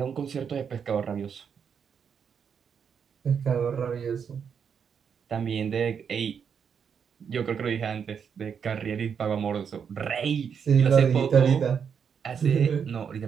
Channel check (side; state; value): left; quieter; 7.1 dB